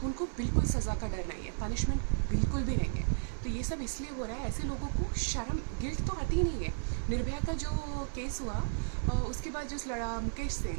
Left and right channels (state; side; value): silent; left; 55 dB below the other